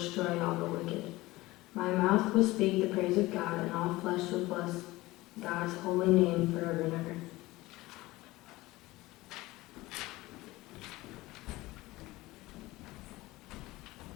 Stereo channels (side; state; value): right; quieter; 19.4 dB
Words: all the wicked. My mouth will speak the praise of God, and all flesh will bless God's holy name forever and ever.